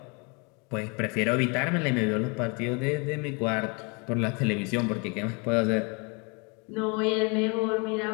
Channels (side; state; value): right; quieter; 31.7 dB